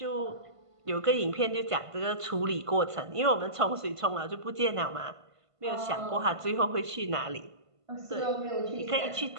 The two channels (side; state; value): left; late; 1.5 ms